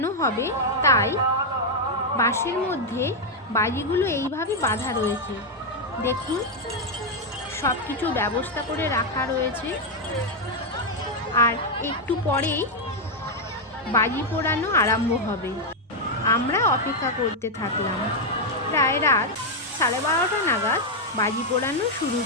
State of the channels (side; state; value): both; normal; correlation 0.01